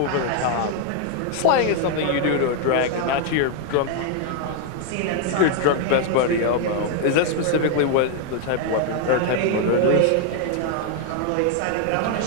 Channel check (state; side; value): different; both; correlation 0.00